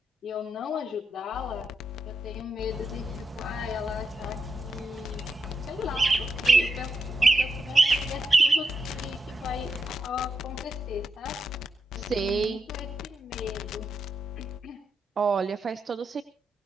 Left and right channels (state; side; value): normal; both; correlation 0.85